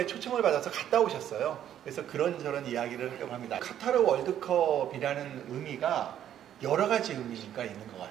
초청을 받아서 갔다 오셨어요. 그래서 그런저런 이야기를 하려고 합니다. 카타르 월드컵이라는 의미가 여러 가지 의미가 있는 것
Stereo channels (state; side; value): quieter; left; 10.6 dB